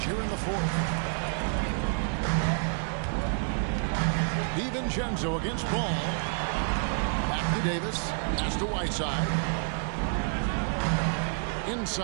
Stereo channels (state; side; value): silent; left; 59 dB below the other